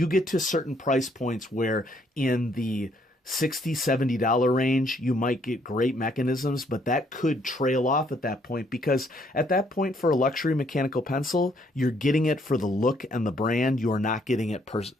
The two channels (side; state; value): both; normal; correlation 0.68